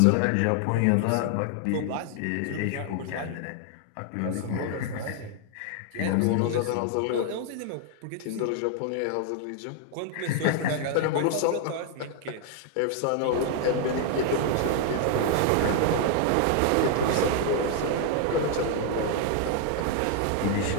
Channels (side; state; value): both; different; correlation 0.00